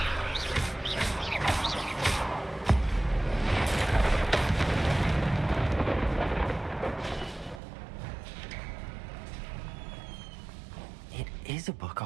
It is a book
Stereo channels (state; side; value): drops out; left; at 7.6 s